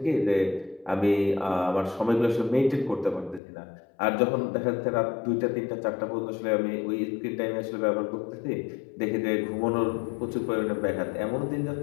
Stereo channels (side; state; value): right; drops out; at 3.4 s